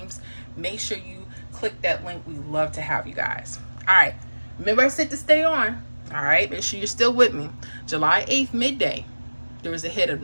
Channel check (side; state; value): both; inverted; correlation -1.00